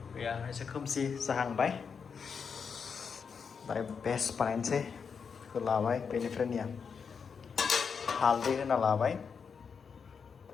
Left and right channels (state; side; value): quieter; right; 6.1 dB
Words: गैया एसे खोमसि जाहांबाय दायो बेस्ट बानायनोसै बेखौ लाबाय बेनिफ्राय निया हालदै होना लाबाय